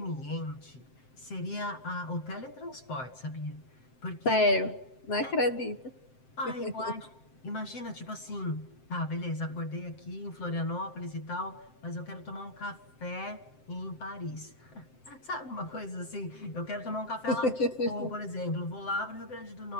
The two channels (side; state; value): right; late; 7.7 ms